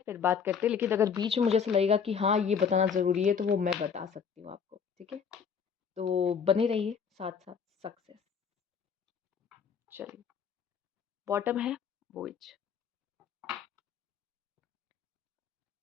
फिर बात करते हैं, लेकिन अगर बीच में मुझे ऐसा लगेगा कि हाँ ये बताना ज़रूरी है तो वो मैं बता सकती हूँ आपको, ठीक है। तो बने रहिए साथ साथ। सक्सेस, चलिए। बॉटम है voyage.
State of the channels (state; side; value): quieter; right; 6.7 dB